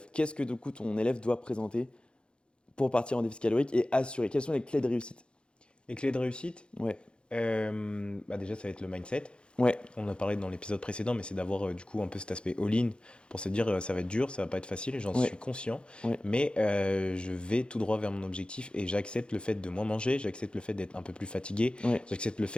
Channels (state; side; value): late; right; 0.055 ms